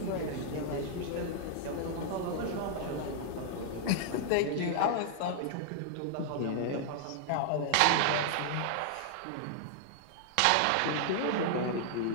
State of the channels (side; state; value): both; different; correlation -0.01